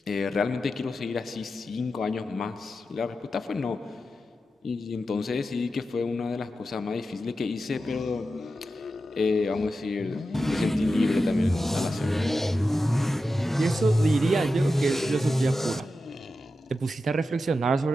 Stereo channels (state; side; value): normal; both; correlation 0.91